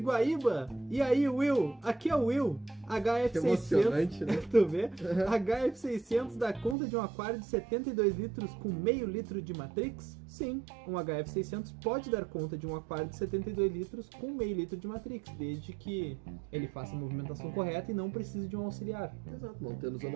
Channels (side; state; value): left; drops out; at 6.8 s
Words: E aí, Will? Aqui é o Will. HF600. Que emocionante, né? Tu vê? HF600 dá conta de um aquário de 72 litros com meio litro de Matrix? Sim, um HF600 pode dar conta de um aquário de 72 litros com meio litro de Matrix, desde que ele faça a movimentação correta e não precise de um auxiliar. Exato, não tendo